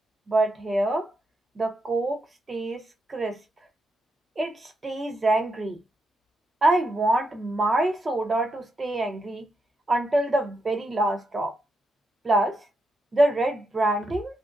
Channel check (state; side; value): normal; both; correlation 0.83